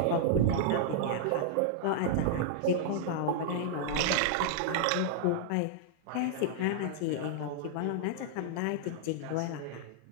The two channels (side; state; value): both; different; correlation -0.01